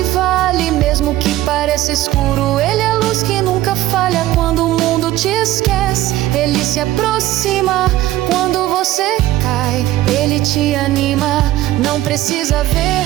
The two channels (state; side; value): quieter; left; 15.2 dB